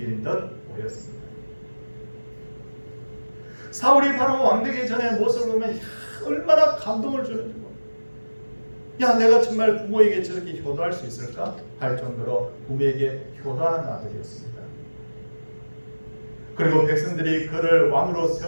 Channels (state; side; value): inverted; both; correlation -1.00